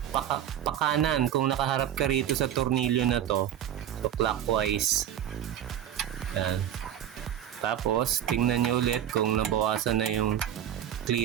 pakanan. Kung nakaharap ka rito sa tornilyo na to, so clockwise. Ayan. Tapos, tingnan nyo ulit kung nabawasan na yung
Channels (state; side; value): quieter; left; 10.5 dB